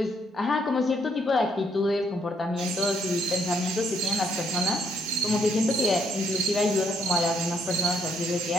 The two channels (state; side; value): normal; both; correlation 0.70